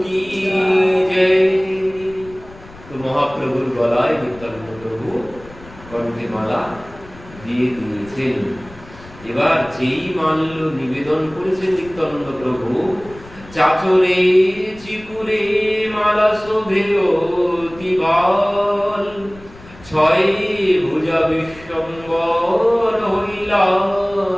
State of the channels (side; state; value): left; noise; rumble, 20 dB below the sound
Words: কি জয়। তো মহাপ্রভুর গলায় নিত্যানন্দ প্রভু কণ্ঠে মালা দিয়ে দিয়েছেন। এবার যেই মাল্য নিবেদন করেছেন নিত্যানন্দ প্রভু, চাচরে চিকুরে মালা শোভে অতি বাল, ছয় ভুজা বিশ্বম্বর হইলা